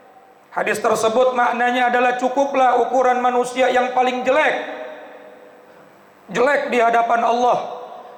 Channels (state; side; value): identical; both; correlation 1.00